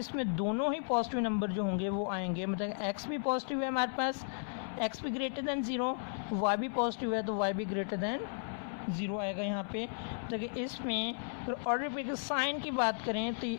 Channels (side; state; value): right; silent; 55 dB below the other